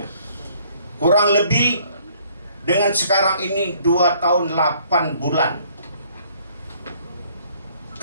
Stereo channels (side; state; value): both; inverted; correlation -0.61